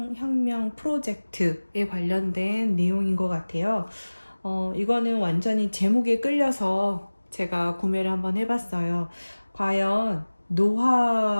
프로젝트에 관련된 내용인 것 같아요. 이거는 완전히 제목에 끌려서 제가 구매를 한번 해봤어요. 과연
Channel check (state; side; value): inverted; both; correlation -1.00